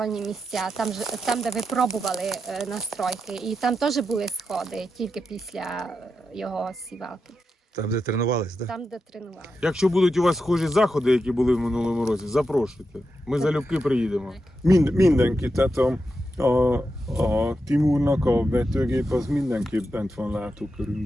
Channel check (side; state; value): both; normal; correlation 0.87